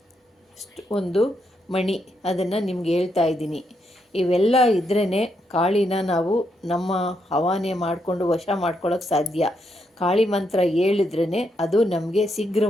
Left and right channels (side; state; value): both; normal; correlation 0.79